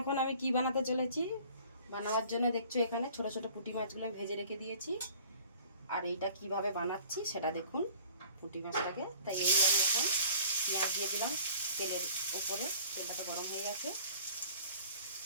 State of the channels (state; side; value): inverted; both; correlation -0.50